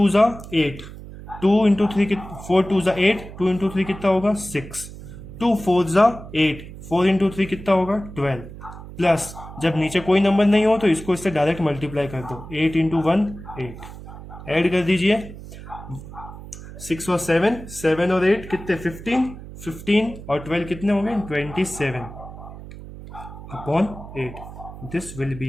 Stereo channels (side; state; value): right; noise; hum, 14 dB below the sound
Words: ज़ा 8, 2 इंटू 3 4 2 ज़ा 8, 2 इंटू 3 कितना होगा 6, 2 4 ज़ा 8, 4 इंटू 3 कितना होगा 12, प्लस जब नीचे कोई नंबर नहीं हो तो इसको इससे डायरेक्ट मल्टीप्लाई कर दो, 8 इंटू 1 8, ऐड कर दीजिए, 6 और 7, 7 और 8 कितने 15, 15 और 12 कितने हो गए 27 upon 8, this will be